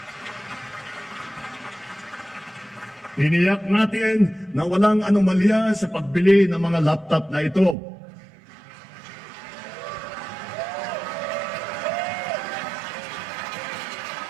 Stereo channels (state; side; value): drops out; left; at 7.8 s